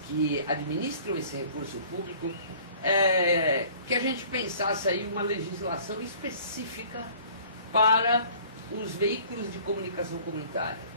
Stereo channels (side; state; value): both; inverted; correlation -0.51